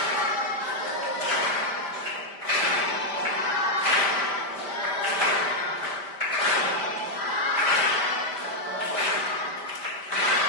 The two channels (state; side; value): late; right; 5.0 ms